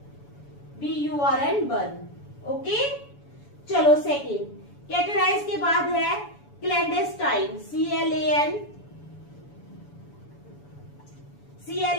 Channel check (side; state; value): right; late; 7.0 ms